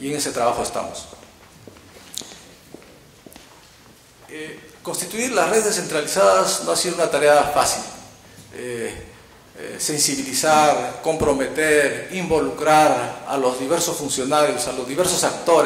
en ese trabajo estamos. Constituir las redes descentralizadas no ha sido una tarea fácil. Sensibilizar, comprometer, involucrar a los diversos funcionarios, a los diversos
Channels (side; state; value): both; identical; correlation 1.00